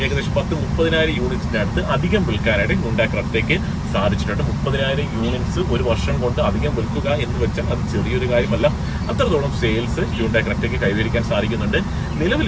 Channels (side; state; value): both; identical; correlation 1.00